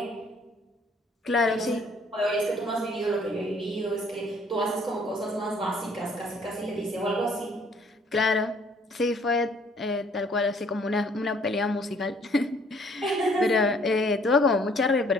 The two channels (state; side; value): normal; both; correlation 0.61